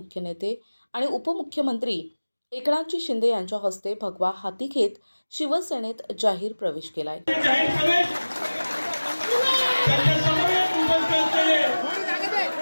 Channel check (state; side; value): inverted; both; correlation -1.00